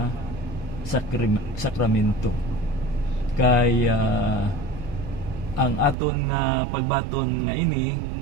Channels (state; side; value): drops out; left; at 6.0 s